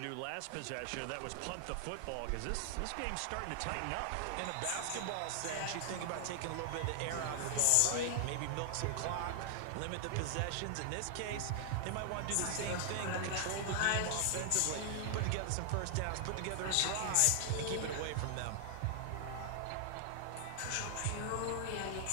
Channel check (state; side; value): different; both; correlation 0.00